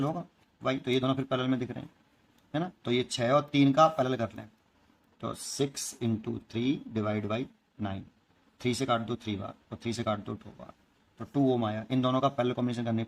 होगा Y, तो ये दोनों फिर पैरेलल में दिख रहे हैं, है ना। तो ये 6 और 3 का पैरेलल कर लें, तो 6 इंटू 3 डिवाइड बाई 9, 3 से काट दो 3 बार और 3 से काट दो 2 बार, तो 2 ओम आया। इन दोनों का पैरेलल कॉम्बिनेशन करने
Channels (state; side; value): identical; both; correlation 1.00